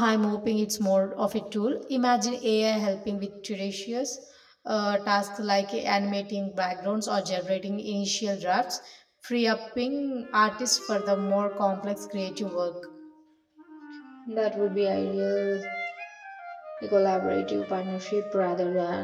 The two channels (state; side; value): identical; both; correlation 1.00